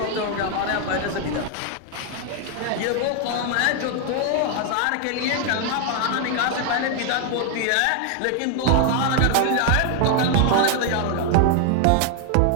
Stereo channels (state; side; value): different; both; correlation 0.00